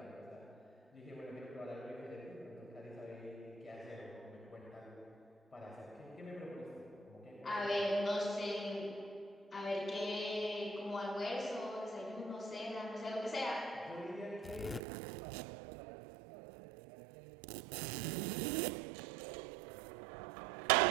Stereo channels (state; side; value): drops out; left; at 14.8 s